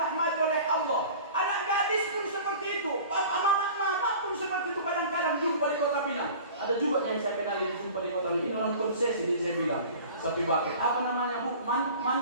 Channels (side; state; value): both; inverted; correlation -0.41